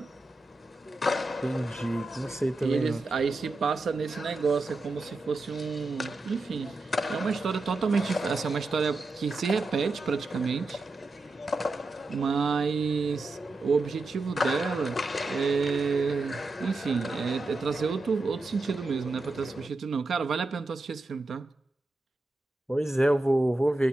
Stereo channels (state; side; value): quieter; left; 3.0 dB